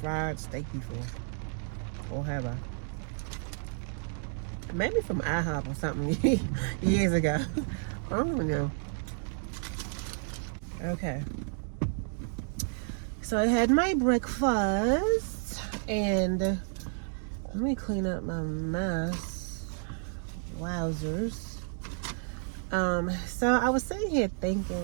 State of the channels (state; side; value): silent; left; 57 dB below the other